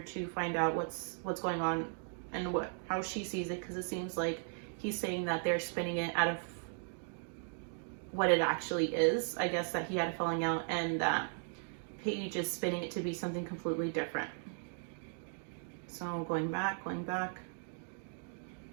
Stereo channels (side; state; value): left; silent; 53 dB below the other